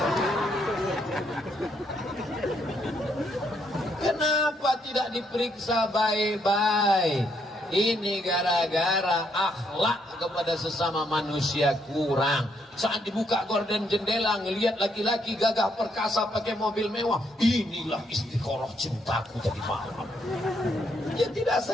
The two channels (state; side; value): normal; both; correlation 0.74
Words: Kenapa tidak diperiksa baik-baik? Ini gara-gara akhlak kepada sesama manusia kurang. Saat dibuka gorden jendela, ngelihat laki-laki gagah perkasa pakai mobil mewah, inilah istiqoroh cintaku tadi malam. Dia tidak